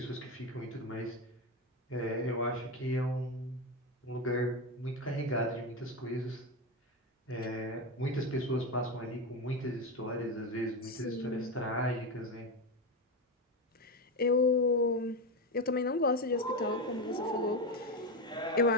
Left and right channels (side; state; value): both; normal; correlation 0.14